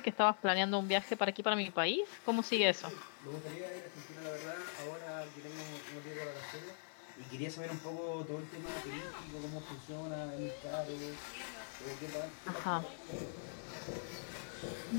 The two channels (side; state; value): right; silent; digital silence